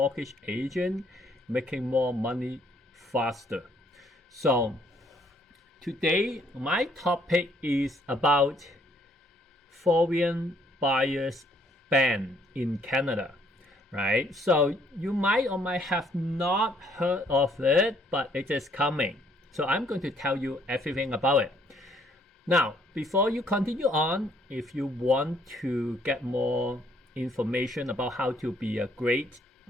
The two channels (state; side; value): normal; both; correlation 0.66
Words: agents making more money faster. So today my topic is about foreign buyers ban in Canada, right? So you might or might have not heard of it, but it is coming. So I'm going to tell you everything about it. Now, before you continue on, if you want to get more information about how to be a great